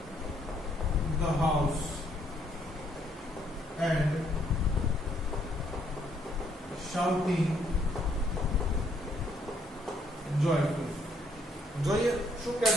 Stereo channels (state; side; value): normal; both; correlation 0.69